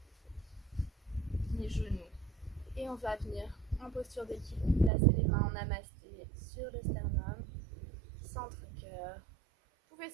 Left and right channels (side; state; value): left; drops out; at 4.9 s